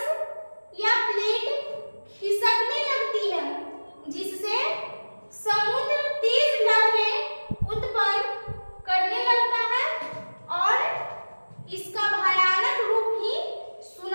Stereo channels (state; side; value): inverted; both; correlation -1.00